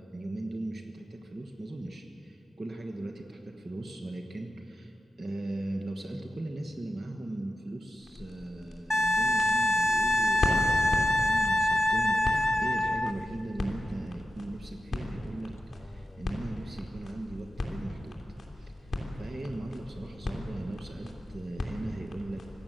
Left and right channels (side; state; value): both; normal; correlation 0.91